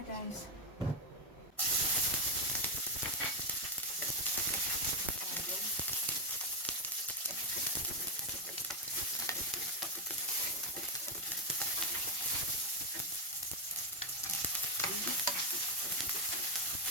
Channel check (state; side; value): normal; both; correlation 0.04